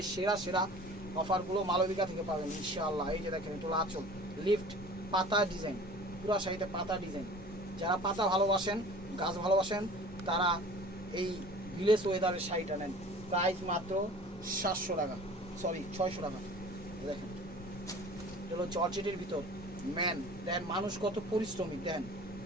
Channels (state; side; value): normal; both; correlation 0.44